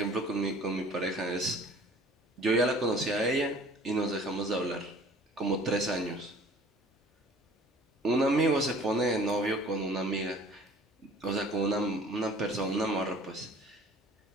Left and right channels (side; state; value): both; normal; correlation 0.50